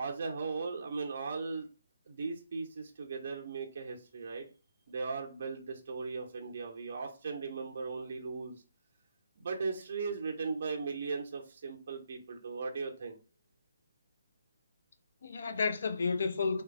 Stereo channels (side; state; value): both; inverted; correlation -0.78